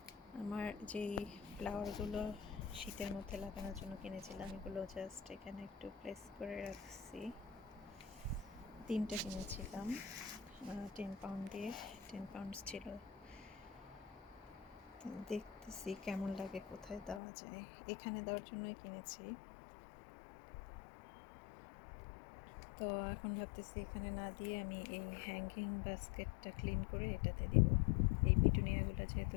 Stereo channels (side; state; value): right; drops out; at 17.2 s